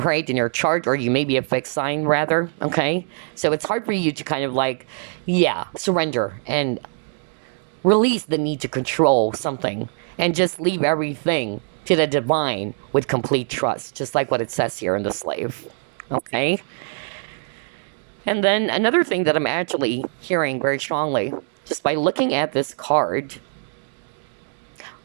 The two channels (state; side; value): silent; left; 63 dB below the other